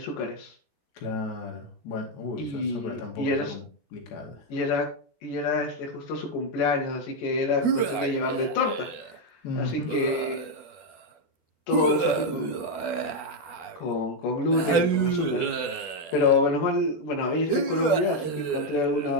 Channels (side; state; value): right; late; 12 ms